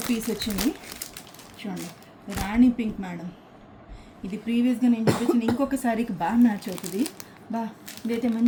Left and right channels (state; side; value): identical; both; correlation 1.00